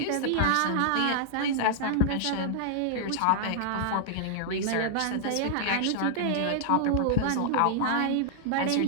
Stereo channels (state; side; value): different; both; correlation -0.01